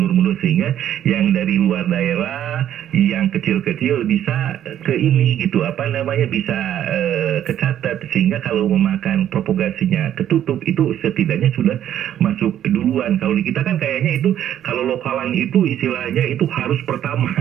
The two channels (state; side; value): quieter; left; 10.9 dB